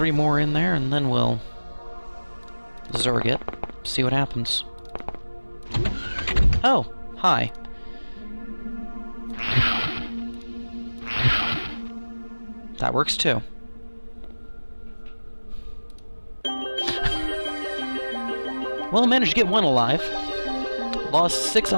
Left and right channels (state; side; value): inverted; both; correlation -1.00